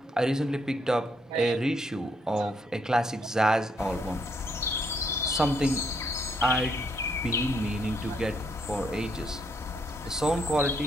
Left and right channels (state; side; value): normal; both; correlation 0.73